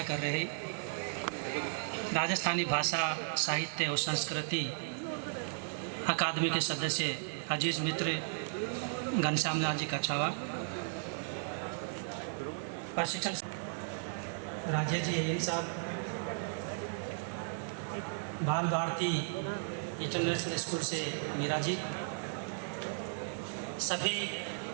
कर रहे राजस्थानी भाषा साहित्य और संस्कृति अकादमी के सदस्य अजीज मित्र घनश्याम लाल जी कछावा, प्रशिक्षण राजेश जी अय्यर साहब, बाल भारती इंटरनेशनल स्कूल से मीरा जी, सभी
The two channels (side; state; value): left; silent; digital silence